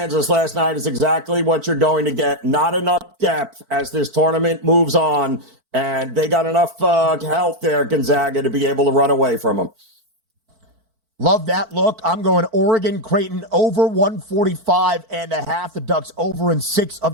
last night is exactly what you're going to get. Not enough depth as this tournament moves on, and they got enough health there, Gonzaga, to be able to run away from them. Love that look. I'm going Oregon Creighton over 145.5. The Ducks over in 6 of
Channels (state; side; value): late; left; 4.5 ms